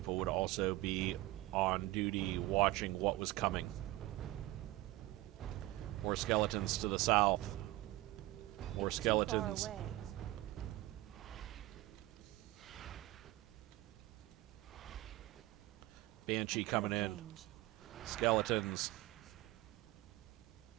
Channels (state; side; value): quieter; left; 17.8 dB